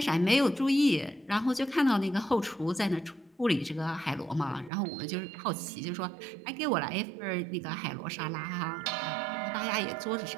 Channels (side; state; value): left; drops out; at 4.7 s